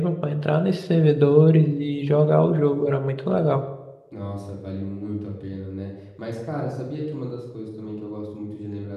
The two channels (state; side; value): identical; both; correlation 1.00